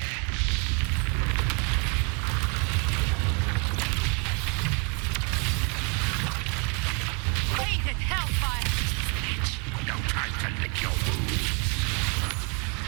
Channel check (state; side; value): quieter; left; 34.1 dB